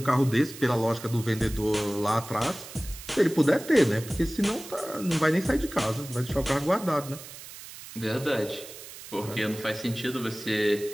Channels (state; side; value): noise; right; hiss, 14 dB below the sound